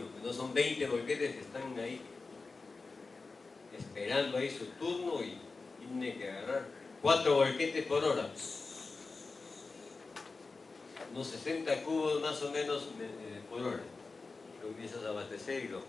no son 20 volquetes que están ahí esperando ahí su turno y tiene que agarrar 4 volquetes por hora, unos 60 cubos más o menos por hora. Comienzas a abastecer y los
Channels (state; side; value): quieter; right; 4.0 dB